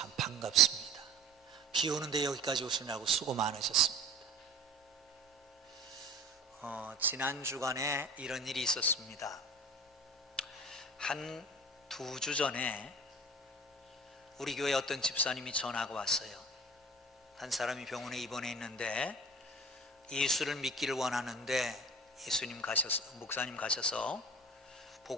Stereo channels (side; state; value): both; normal; correlation 0.41